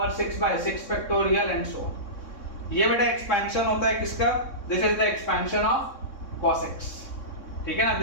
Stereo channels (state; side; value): late; right; 3.6 ms